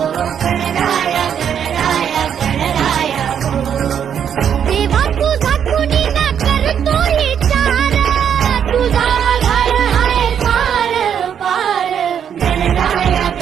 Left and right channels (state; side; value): quieter; left; 8.4 dB